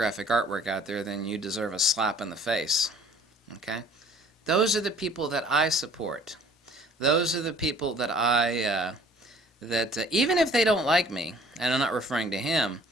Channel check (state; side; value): normal; both; correlation 0.53